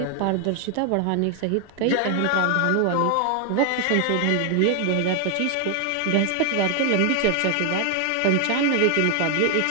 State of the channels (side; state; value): both; different; correlation 0.00